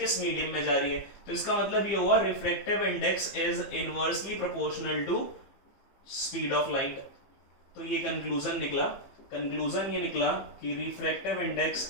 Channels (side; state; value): right; late; 15 ms